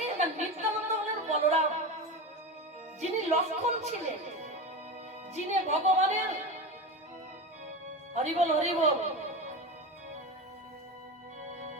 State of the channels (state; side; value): normal; both; correlation 0.23